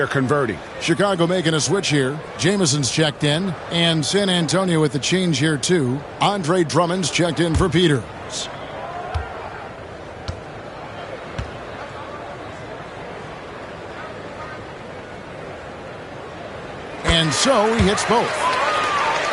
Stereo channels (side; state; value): both; identical; correlation 1.00